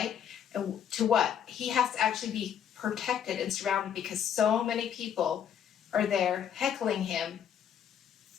And to what? He has to actually be protected and surrounded because so many people are there heckling him,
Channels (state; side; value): quieter; right; 8.8 dB